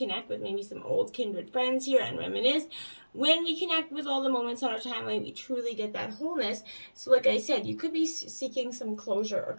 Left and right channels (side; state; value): both; inverted; correlation -1.00